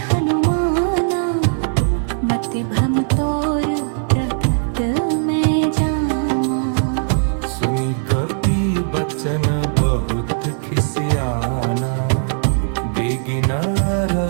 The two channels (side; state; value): left; silent; digital silence